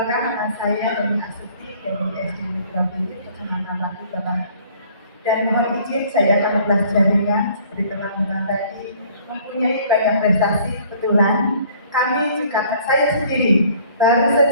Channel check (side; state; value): both; inverted; correlation -0.56